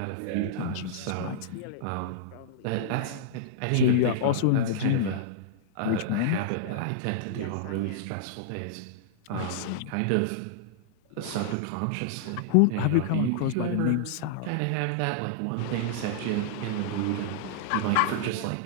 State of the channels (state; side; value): different; both; correlation -0.02